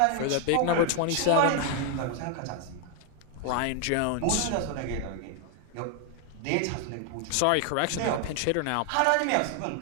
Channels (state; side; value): different; both; correlation 0.00